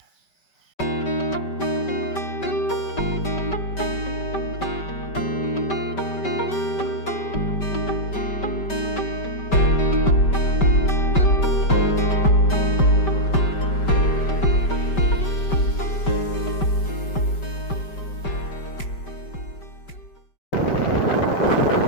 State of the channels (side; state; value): right; late; 5.2 ms